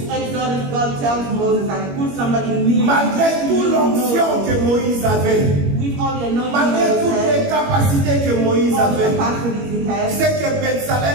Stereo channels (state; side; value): late; left; 21 ms